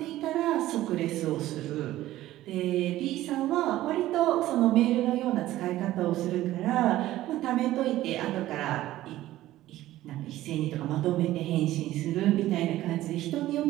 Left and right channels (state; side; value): quieter; left; 15.1 dB